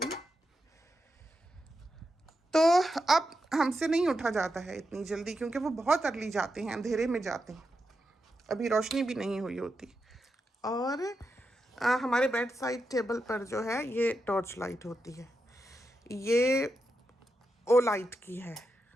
तो अब हमसे नहीं उठा जाता है इतनी जल्दी, क्योंकि वो बहुत अर्ली जाते हैं, अंधेरे में जाते हैं, अभी रोशनी भी नहीं हुई होती। और हमारे बेड साइड टेबल पर जो है ये टॉर्च लाइट होती है, ये ओ लाइट की है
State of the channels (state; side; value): normal; both; correlation 0.87